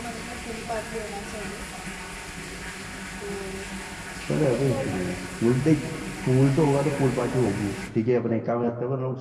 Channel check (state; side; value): identical; both; correlation 1.00